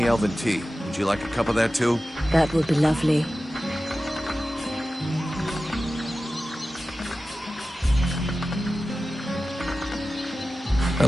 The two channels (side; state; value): both; normal; correlation 0.95